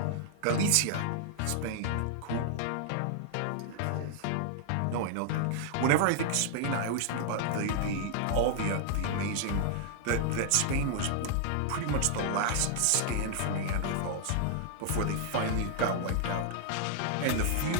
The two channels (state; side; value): different; both; correlation -0.01